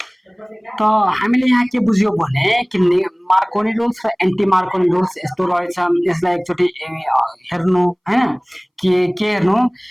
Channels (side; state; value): both; identical; correlation 1.00